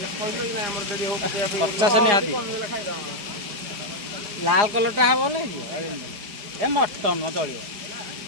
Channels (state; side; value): late; left; 4.9 ms